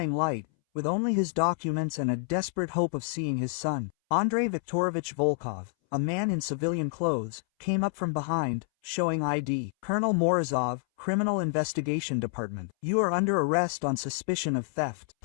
light, with only his documents and a desperate hope of seeing his son. Andrei Viktorovich Volkov, a man in civilian clothes, came up from behind, showing ID. "Colonel Morozov, Criminal Investigation Department. You are under arrest on suspicion of theft.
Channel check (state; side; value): silent; right; 59 dB below the other